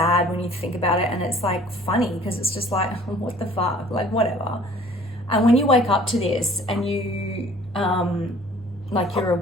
when you think about it, and it's like funny because it's just like, what the fuck, like whatever. And when you wake up to this and you like you're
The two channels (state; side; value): normal; both; correlation 0.52